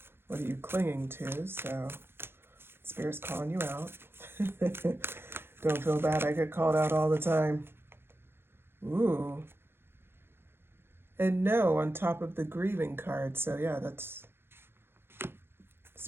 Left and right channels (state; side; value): late; left; 0.11 ms